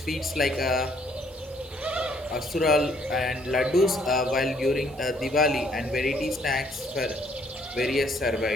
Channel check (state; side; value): normal; both; correlation 0.65